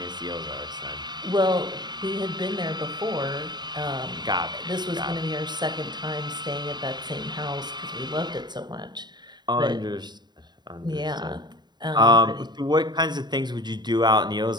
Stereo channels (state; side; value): late; left; 0.21 ms